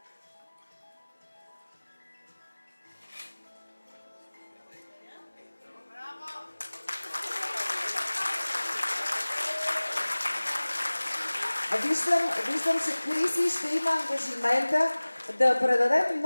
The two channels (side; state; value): both; inverted; correlation -1.00